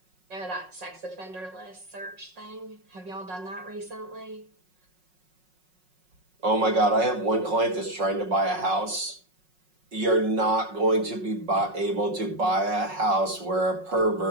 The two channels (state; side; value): late; left; 5.4 ms